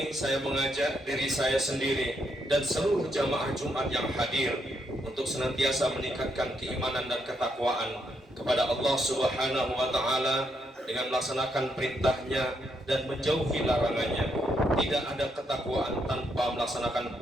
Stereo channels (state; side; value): normal; both; correlation 0.77